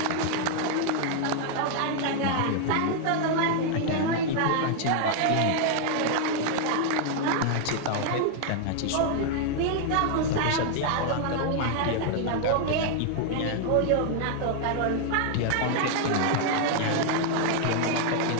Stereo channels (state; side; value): different; both; correlation 0.00